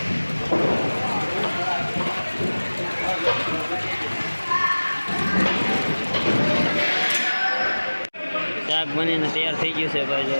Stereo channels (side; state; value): both; inverted; correlation -1.00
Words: શાક બનીને તૈયાર થઈ ગયું છે ભાઈ જો